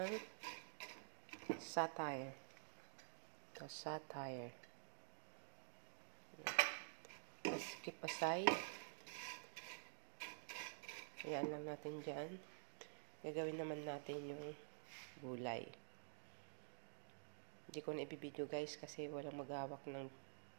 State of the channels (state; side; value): silent; left; digital silence